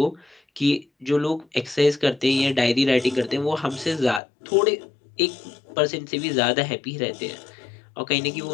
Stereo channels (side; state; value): right; drops out; at 4.2 s